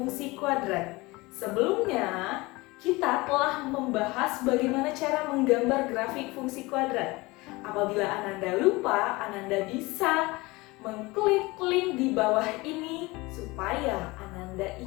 kuadrat. Sebelumnya kita telah membahas bagaimana cara menggambar grafik fungsi kuadrat. Apabila Ananda lupa, Ananda bisa mengklik link di bawah ini supaya Ananda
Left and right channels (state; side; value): quieter; right; 22.6 dB